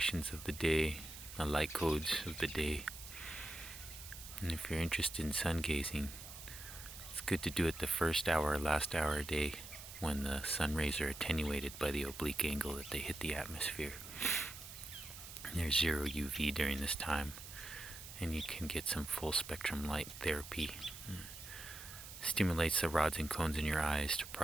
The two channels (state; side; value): noise; right; hiss, 12 dB below the sound